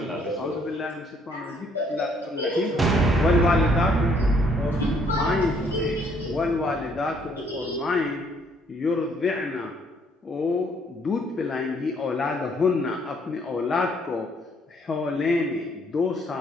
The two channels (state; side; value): normal; both; correlation 0.66